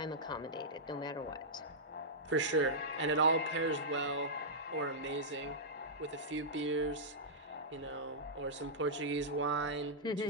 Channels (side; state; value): both; normal; correlation -0.12